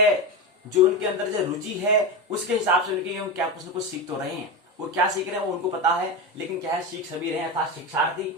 जो उनके अंदर जो रुचि है, उसके हिसाब से उनके क्या कुछ न कुछ सीख तो रहे हैं। वो क्या सीख रहे हैं वो उनको पता है, लेकिन क्या है, सीख सभी रहे हैं, अर्थात शिक्षार्थी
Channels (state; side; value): normal; both; correlation 0.18